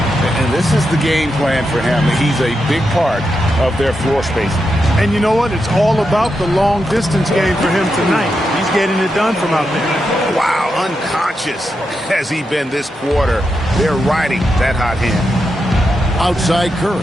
And this is the game plan for him. He's a big part of their floor spacing. And you know what? It's all about the long-distance game for him tonight. He's getting it done from out there. Wow, unconscious has he been this quarter. They're riding that hot hand. Outside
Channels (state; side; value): normal; both; correlation 0.86